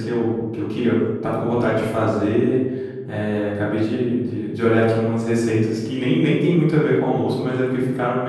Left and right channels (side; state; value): both; identical; correlation 1.00